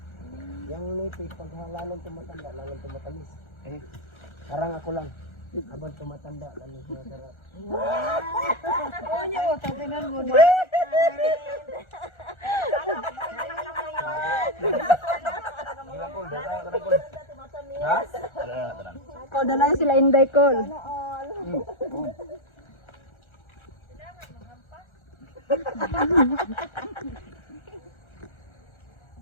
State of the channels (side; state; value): right; late; 1.3 ms